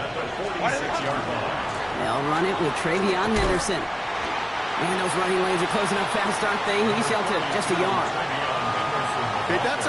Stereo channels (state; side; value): identical; both; correlation 1.00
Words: They'll run it with Travion Henderson. Man, those running lanes are closing up fast, aren't they? He's held to just a yard. Okay, that's